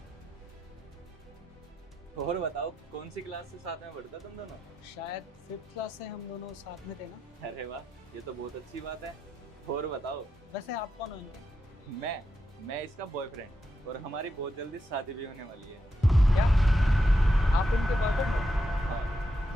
और बताओ, कौन सी क्लास से साथ में पढ़ते तुम दोनों? शायद 5th क्लास से हम दोनों साथ में थे ना। अरे वाह, ये तो बहुत अच्छी बात है। और बताओ। वैसे आप कौन हो इनके? मैं इसका बॉयफ्रेंड, और हमारी बहुत जल्दी शादी भी होने वाली है। क्या आप इनके बॉयफ्रेंड हो?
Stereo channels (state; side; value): normal; both; correlation 0.85